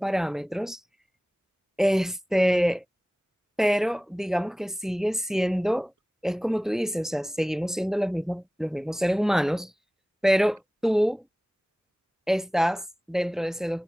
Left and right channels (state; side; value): normal; both; correlation 0.98